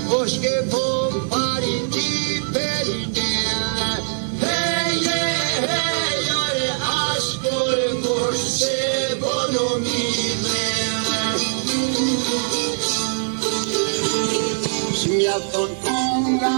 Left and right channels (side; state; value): left; silent; 65 dB below the other